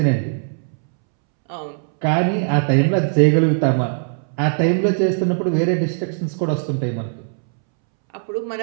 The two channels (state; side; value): silent; left; 66 dB below the other